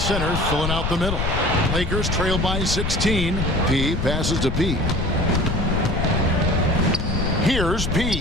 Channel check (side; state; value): left; noise; rumble, 2 dB below the sound